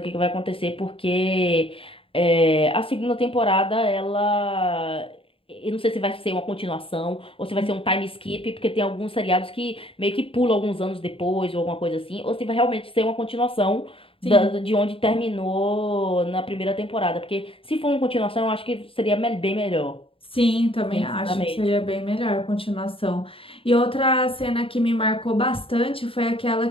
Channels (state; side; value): late; right; 0.26 ms